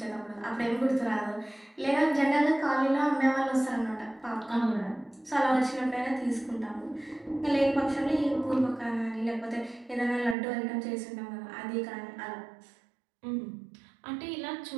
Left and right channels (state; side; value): drops out; left; at 10.4 s